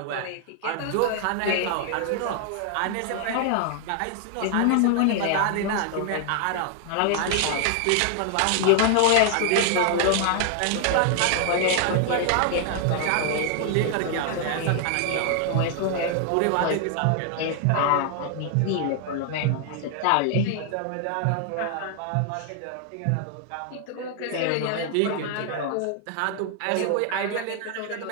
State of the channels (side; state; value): both; different; correlation 0.00